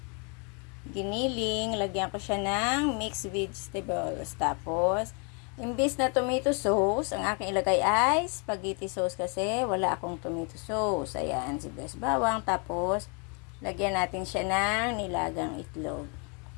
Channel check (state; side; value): quieter; right; 36.2 dB